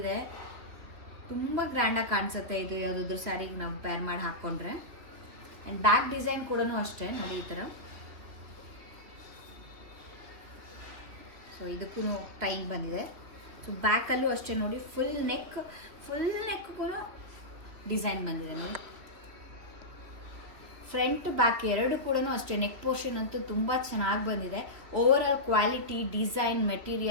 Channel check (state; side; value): late; left; 3.1 ms